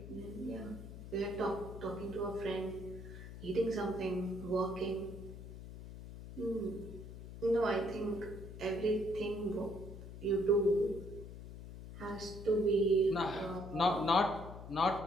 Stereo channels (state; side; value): noise; left; hum, 12 dB below the sound